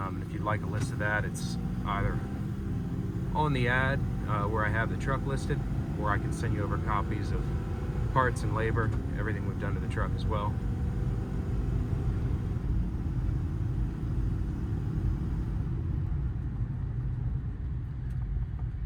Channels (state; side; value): identical; both; correlation 1.00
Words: if you'd like a list of that, it's either on the ad where I have the truck listed, or I can send you over copies of parts and labor, everything we've done to the truck as well.